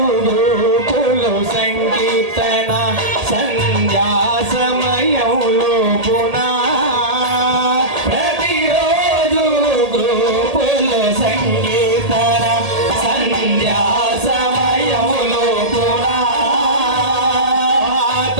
గ్రూపులో సంకీర్తన సంధ్యా సమయంలో పునా ప్రతిరోజు గ్రూపులో సంకీర్తన సంధ్యా సమయములో పునా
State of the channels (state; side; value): late; left; 1.8 ms